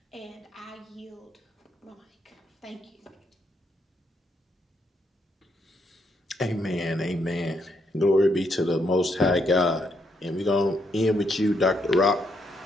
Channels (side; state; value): both; normal; correlation 0.76